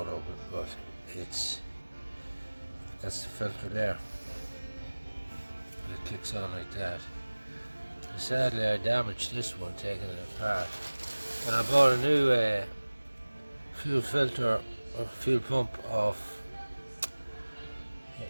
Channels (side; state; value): both; inverted; correlation -1.00